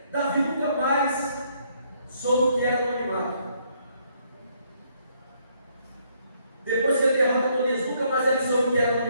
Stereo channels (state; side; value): inverted; both; correlation -0.70